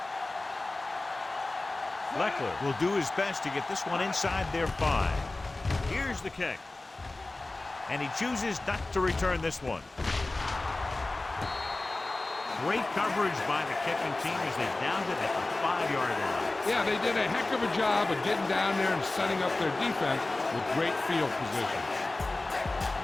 Leckler will do his best to get this one inside their 5. Here's the kick. And he chooses not to return this one. Great coverage by the kicking team as they downed it at the 5-yard line. Yeah, they did a heck of a job of getting down there and setting up their defense with great field position.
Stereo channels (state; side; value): quieter; right; 3.0 dB